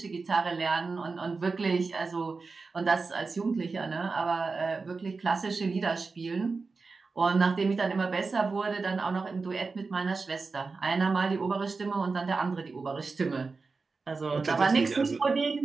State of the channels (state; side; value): quieter; left; 4.2 dB